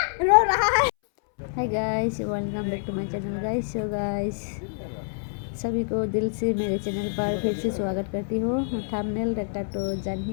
रो रहा है। Hi guys, welcome back to my channel guys. So guys, सभी को दिल से मेरे चैनल पर फिर से स्वागत करती हूँ। थंबनेल देखकर तो जान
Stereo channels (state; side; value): silent; right; 61 dB below the other